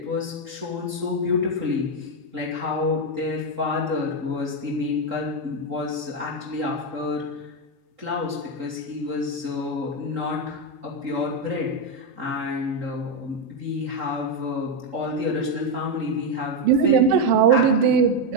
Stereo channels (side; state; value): left; late; 3.8 ms